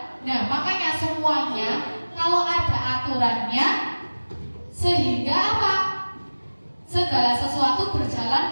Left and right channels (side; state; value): both; inverted; correlation -1.00